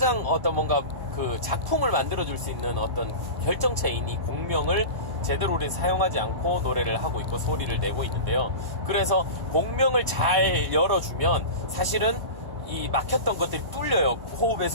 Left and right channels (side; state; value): left; late; 1.1 ms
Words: 뭔가 그 작품을 만들어줄 수 있는 어떤 결정체인 이 공명을 제대로 우리 사용하지 않고 노래를 하고 있고 소리를 내고 있는데요. 그래서 공명을 잘 열어주면 사실은 이 막혔던 것들이 뚫려요.